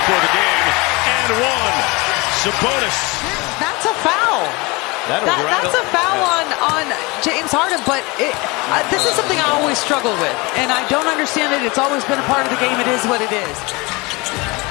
the game. And one. Sabonis. That's a foul. That's a foul on James Harden, but this is something I always struggle with, and I don't understand it. It's always been a part of the game. It is what it is.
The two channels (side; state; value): right; quieter; 25.4 dB